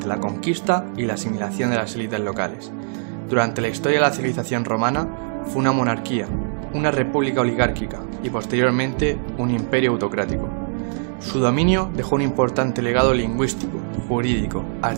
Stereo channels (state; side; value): silent; left; 64 dB below the other